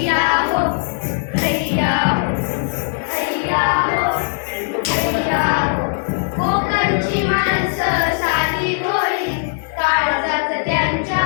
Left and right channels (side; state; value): right; silent; 56 dB below the other